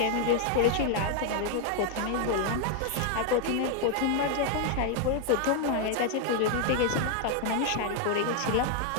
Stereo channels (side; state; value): both; different; correlation 0.00